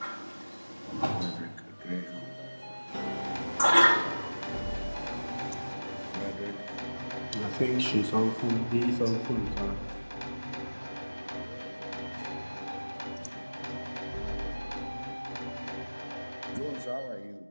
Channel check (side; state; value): both; inverted; correlation -1.00